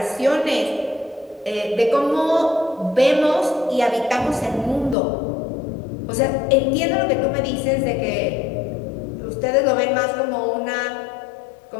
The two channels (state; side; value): drops out; right; at 5.0 s